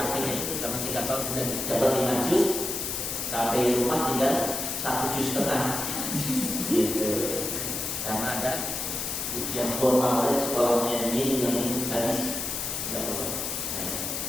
itu karena 3 tahun sudah dapat 5 juz. Sampai rumah tinggal 1,5 juz gitu. Karena ada ujian formal dari sekolahnya ini yang habis tidak perlu.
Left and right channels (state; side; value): noise; left; hiss, 3 dB below the sound